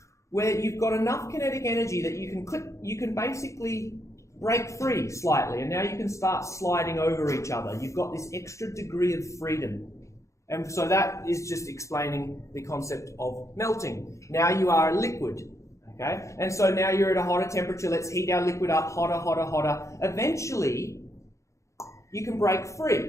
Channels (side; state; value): right; late; 0.15 ms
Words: where you've got enough kinetic energy that you can basically break free slightly, and now you can start sliding over each other. You've got this extra degree of freedom. And so that is just explaining the concept of melting. Now you are a liquid. Okay? And so now you're at a hotter temperature. Let's heat our liquid up hotter, hotter, hotter. Eventually, you can break